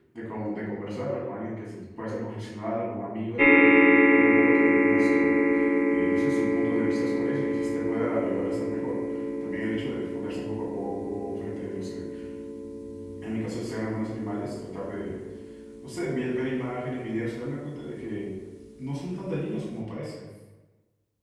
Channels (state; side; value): identical; both; correlation 1.00